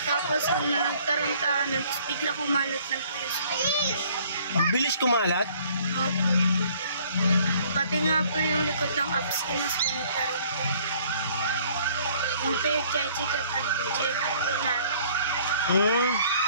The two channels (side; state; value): both; inverted; correlation -0.58